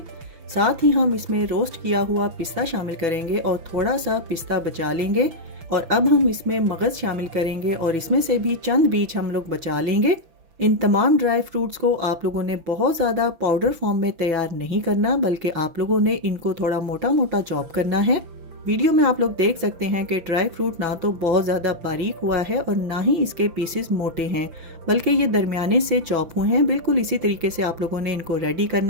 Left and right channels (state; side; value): late; left; 6.0 ms